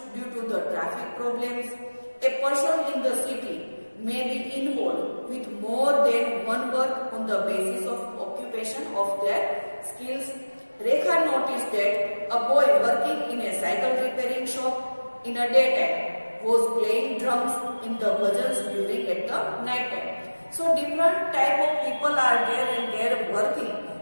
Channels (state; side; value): inverted; both; correlation -1.00